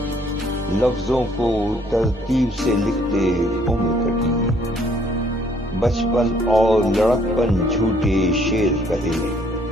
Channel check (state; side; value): normal; both; correlation 0.63